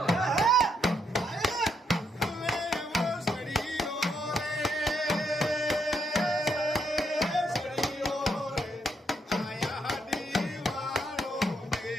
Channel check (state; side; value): normal; both; correlation 0.76